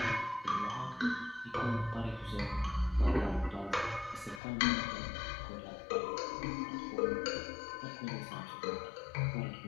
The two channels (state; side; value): drops out; right; at 4.4 s